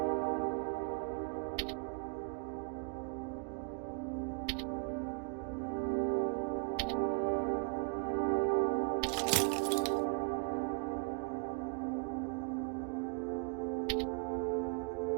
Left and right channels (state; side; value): quieter; left; 38.0 dB